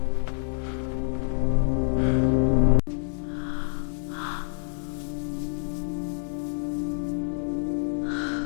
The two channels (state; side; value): silent; right; 60 dB below the other